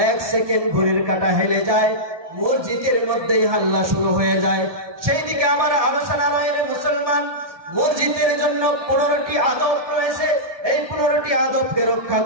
1 সেকেন্ড ঘড়ির কাঁটা হেলে যায়, মসজিদের মধ্যেই হাল্লা শুরু হয়ে যায়। সেই দিকে আমার আলোচনা নয়। রে মুসলমান, মসজিদের জন্য 15টি আদব রয়েছে, এই 15টি আদবকে রক্ষা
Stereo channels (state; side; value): late; left; 1.2 ms